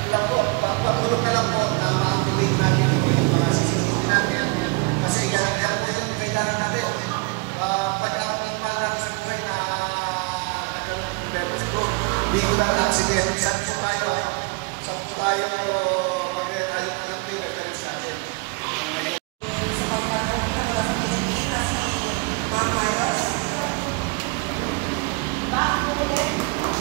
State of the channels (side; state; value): left; quieter; 30.0 dB